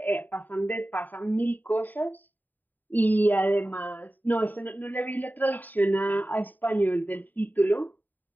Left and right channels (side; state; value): right; late; 0.088 ms